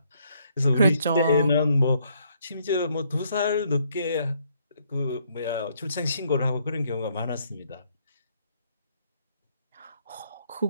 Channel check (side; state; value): both; inverted; correlation -0.70